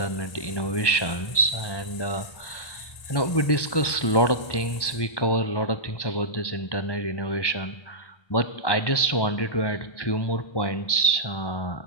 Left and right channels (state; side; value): late; right; 1.1 ms